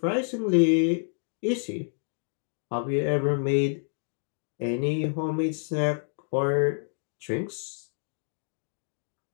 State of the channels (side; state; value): right; silent; digital silence